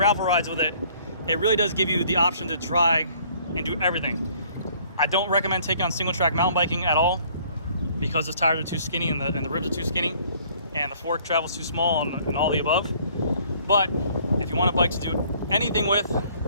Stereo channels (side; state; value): both; inverted; correlation -0.59